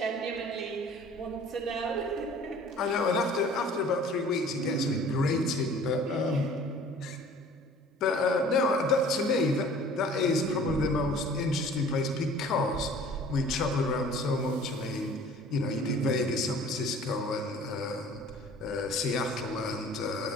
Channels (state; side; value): normal; both; correlation 0.48